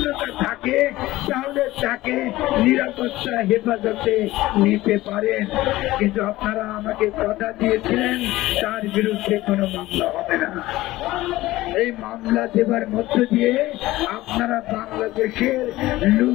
থাকে তাহলে তাকে নিরাপত্তা হেফাজতে নিতে পারেন, কিন্তু আপনারা আমাকে কথা দিয়েছিলেন তার বিরুদ্ধে কোনো মামলা হবে না। এই মামলা দেবার মধ্য দিয়ে আপনারা বাংলাদেশের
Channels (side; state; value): right; quieter; 17.4 dB